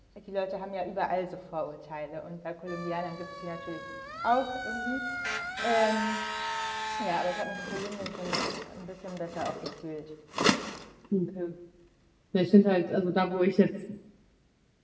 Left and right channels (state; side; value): identical; both; correlation 1.00